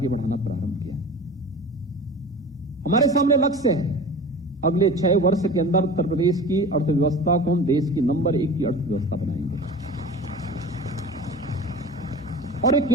बढ़ाना प्रारंभ किया। हमारे सामने लक्ष्य है अगले 6 वर्ष के अंदर उत्तर प्रदेश की अर्थव्यवस्था को हम देश की नंबर 1 की अर्थव्यवस्था बनाएंगे। और ये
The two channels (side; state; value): both; normal; correlation 0.36